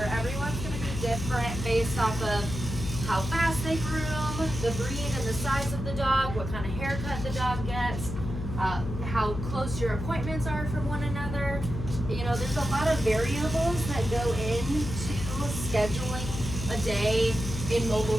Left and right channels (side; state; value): left; noise; hum, 6 dB below the sound